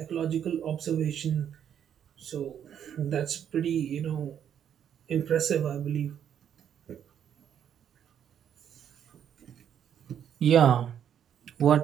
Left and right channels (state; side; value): quieter; left; 9.1 dB